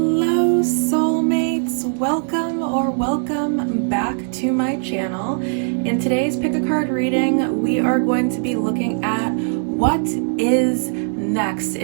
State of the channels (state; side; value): silent; left; digital silence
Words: soulmates, welcome back to my channel. In today's pick a card reading, we are going to be looking at what is next.